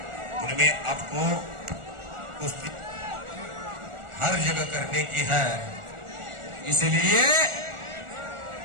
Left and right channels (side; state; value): left; late; 1.4 ms